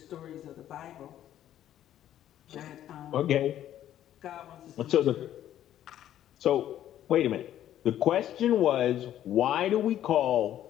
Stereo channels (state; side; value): quieter; right; 11.7 dB